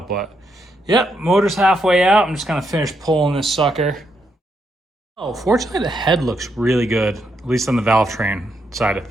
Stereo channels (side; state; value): both; normal; correlation 0.79